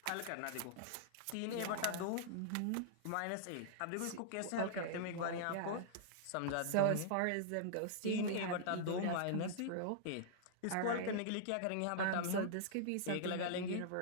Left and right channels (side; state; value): both; different; correlation -0.01